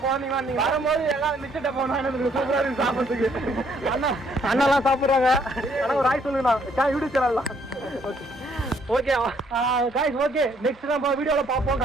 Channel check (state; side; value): normal; both; correlation 0.67